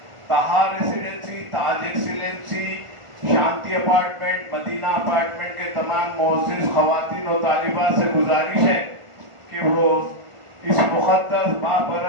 تہا ریسیڈنسی، تاج ایکسیلنسی، شانتی اپارٹمنٹ، مدینہ اپارٹمنٹ کے تمام معزز خواتین و طالبات سے گزارش ہے کہ وہ اس مقدس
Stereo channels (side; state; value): left; late; 1.4 ms